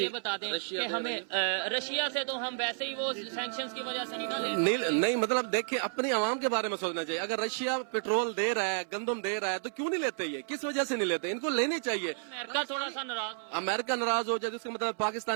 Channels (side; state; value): left; silent; 57 dB below the other